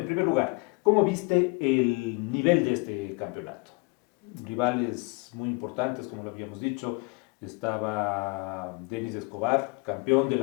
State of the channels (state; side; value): quieter; right; 28.9 dB